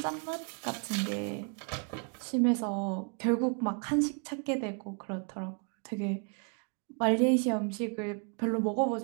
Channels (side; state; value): left; quieter; 38.9 dB